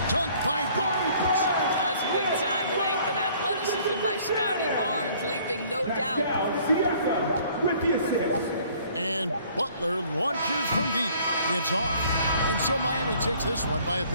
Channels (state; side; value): inverted; both; correlation -0.57